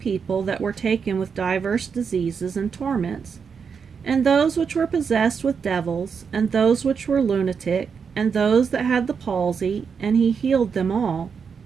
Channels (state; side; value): quieter; left; 6.2 dB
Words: that were taken with divers diseases and torments, and those which were possessed with devils, and those which were lunatic, and those that had the palsy, and he healed them all.